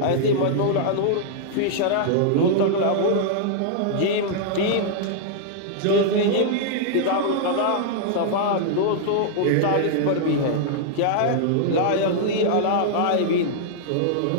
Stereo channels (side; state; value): both; different; correlation -0.01